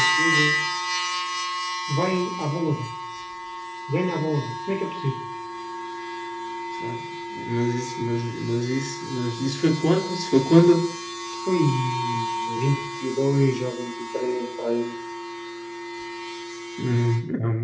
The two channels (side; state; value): both; identical; correlation 1.00